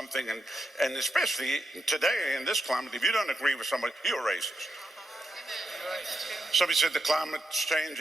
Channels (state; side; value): normal; both; correlation 0.84